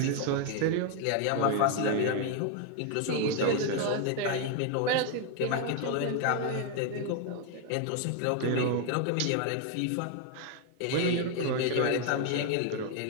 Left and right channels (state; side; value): different; both; correlation 0.01